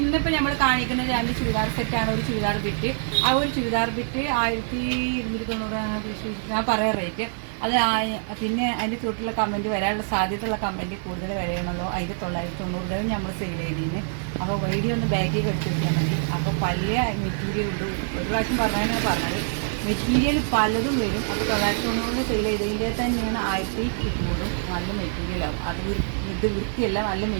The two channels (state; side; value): silent; left; digital silence